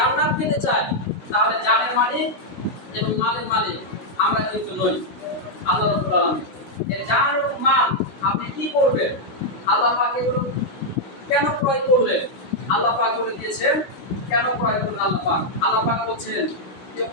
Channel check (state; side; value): late; right; 16 ms